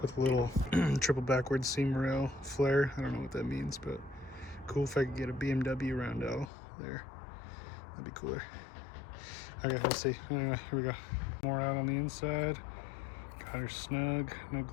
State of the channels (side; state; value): right; drops out; at 6.5 s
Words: with a little triple backward seam rail flare. I don't know what that means, but cool if I could get a BMW roundel there. That'd be cooler. Okay, we'll see. Anyway, here we go. More out on the inside. Got her snug. No